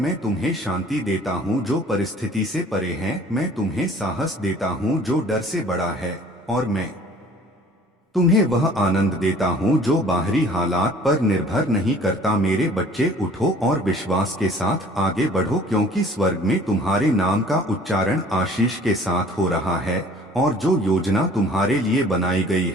तुम्हें शांति देता हूँ जो परिस्थिति से परे है, मैं तुम्हें साहस देता हूँ जो डर से बड़ा है और मैं तुम्हें वह आनंद देता हूँ जो बाहरी हालात पर निर्भर नहीं करता। मेरे बच्चे, उठो और विश्वास के साथ आगे बढ़ो, क्योंकि स्वर्ग में तुम्हारे नाम का उच्चारण आशीष के साथ हो रहा है, और जो योजना तुम्हारे लिए बनाई गई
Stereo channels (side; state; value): both; normal; correlation 0.51